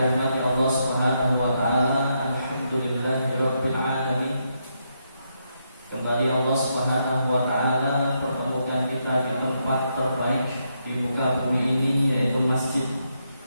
Allah Subhanahu wa taala, alhamdulillahirabbil alamin. Kembali Allah Subhanahu wa taala pertemukan kita di tempat terbaik di muka bumi ini, yaitu masjid.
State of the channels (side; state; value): both; inverted; correlation -0.80